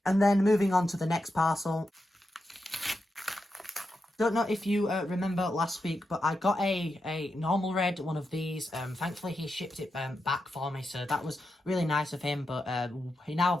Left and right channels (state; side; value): normal; both; correlation 0.87